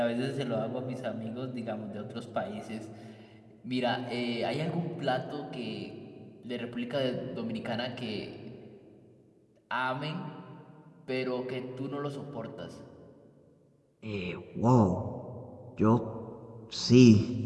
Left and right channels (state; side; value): identical; both; correlation 1.00